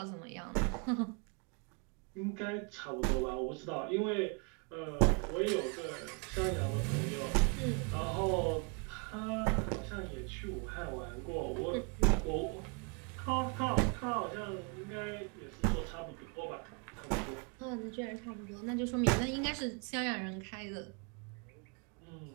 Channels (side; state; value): left; quieter; 34.0 dB